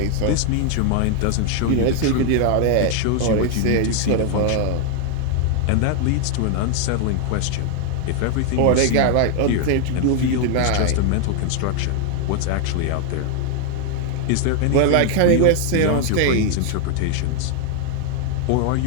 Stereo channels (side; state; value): both; different; correlation 0.00